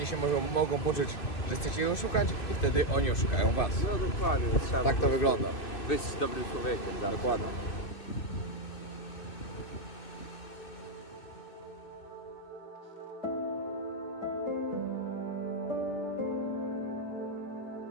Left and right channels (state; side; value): late; right; 2.6 ms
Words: się mogą poczuć, że chcecie ich oszukać i wtedy oni oszukają was. No dokładnie, trzeba Tak to wygląda. być dobrym człowiekiem, tak? Dokładnie.